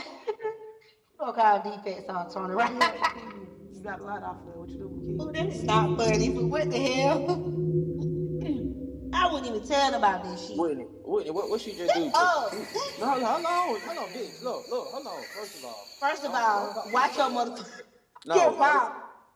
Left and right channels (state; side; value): identical; both; correlation 1.00